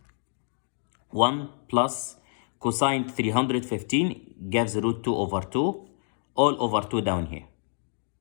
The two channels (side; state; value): right; silent; 60 dB below the other